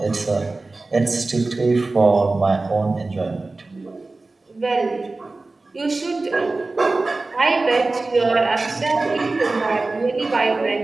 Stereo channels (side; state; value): left; quieter; 3.4 dB